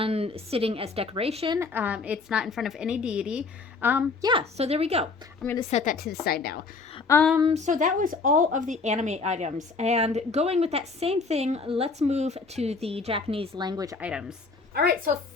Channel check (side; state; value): right; quieter; 4.3 dB